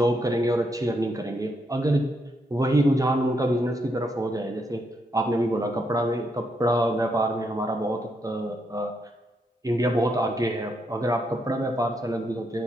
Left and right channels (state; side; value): normal; both; correlation 0.78